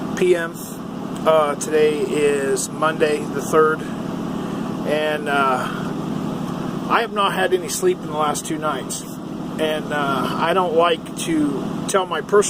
p.m. Today is Monday the 3rd, and I have not had any sleep in the last 2 nights. And I don't like to tell my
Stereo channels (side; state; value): both; identical; correlation 1.00